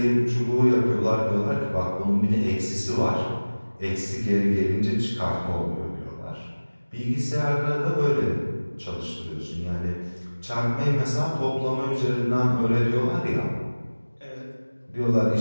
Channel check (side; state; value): both; inverted; correlation -1.00